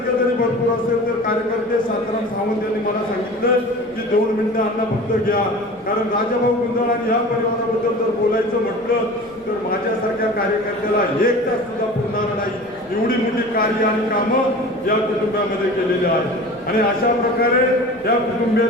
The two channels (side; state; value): left; noise; rumble, 29 dB below the sound